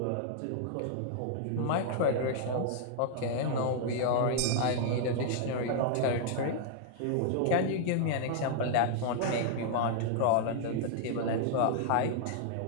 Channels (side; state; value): both; different; correlation -0.01